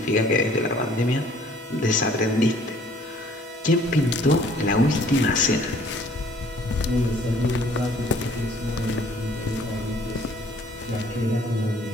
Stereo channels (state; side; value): normal; both; correlation 0.57